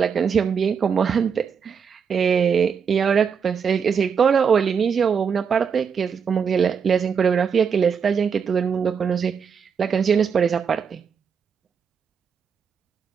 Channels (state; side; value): quieter; left; 6.6 dB